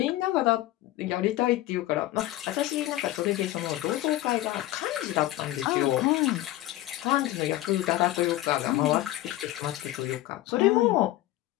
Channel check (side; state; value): right; quieter; 15.8 dB